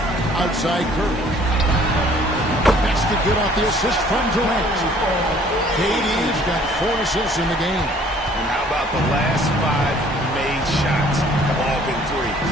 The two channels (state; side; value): normal; both; correlation 0.56